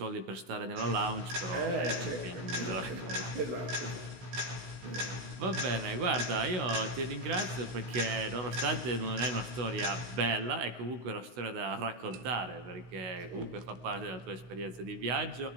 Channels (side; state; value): left; late; 16 ms